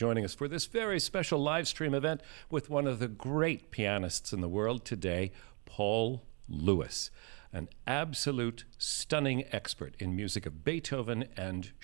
us for this very special live stream event with one of the great pianists in the world today, Paul Lewis, an absolute stunning expert in music of Beethoven and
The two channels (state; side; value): quieter; left; 33.7 dB